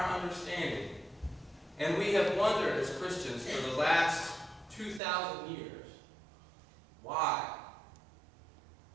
understanding. And we have wondered as Christians for the last 2,000 years, why?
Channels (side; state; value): left; drops out; at 5.0 s